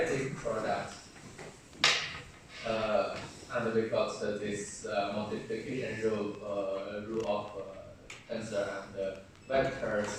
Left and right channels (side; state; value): both; identical; correlation 1.00